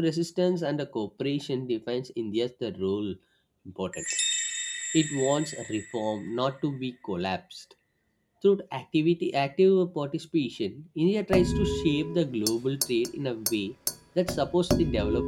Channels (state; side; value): identical; both; correlation 1.00